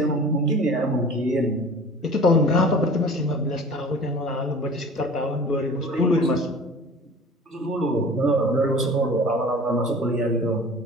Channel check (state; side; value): normal; both; correlation 0.42